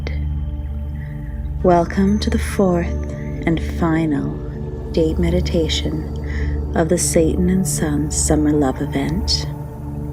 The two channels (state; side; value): identical; both; correlation 1.00